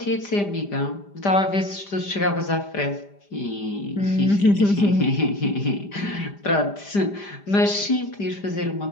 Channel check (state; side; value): late; right; 5.0 ms